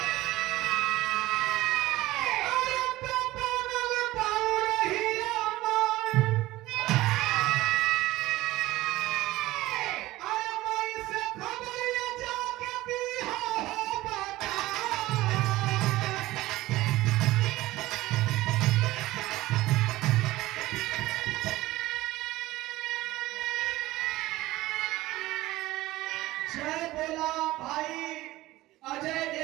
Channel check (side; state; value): left; quieter; 17.5 dB